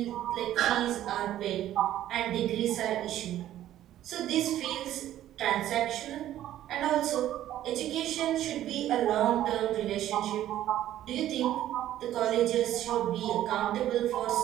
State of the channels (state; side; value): quieter; left; 12.7 dB